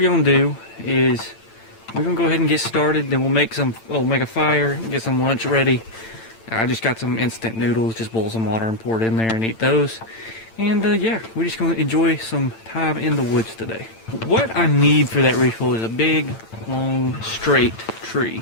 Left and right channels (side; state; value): right; late; 8.9 ms